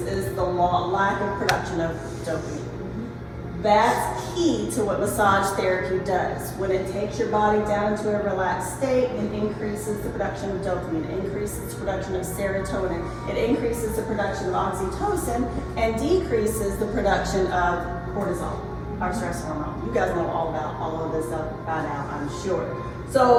is the lack of production of dopamine. That's key to what massage therapy does. When it takes your body down into a relaxed state, it increases the production of dopamine, it increases the production of serotonin, it increases the production of oxytocin, and decreases the production of cortisol, our stress hormone. You guys know all about all of this stuff by now, I'm sure.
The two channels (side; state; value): both; identical; correlation 1.00